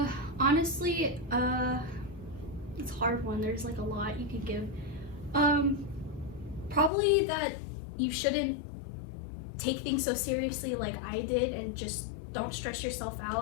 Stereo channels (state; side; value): drops out; right; at 6.9 s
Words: Honestly, it's a hard one. There's like a lot you could give. Probably that you shouldn't take things so seriously like I did, and just don't stress yourself